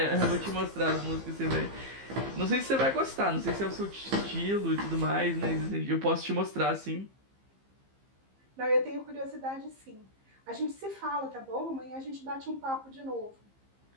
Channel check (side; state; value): left; late; 15 ms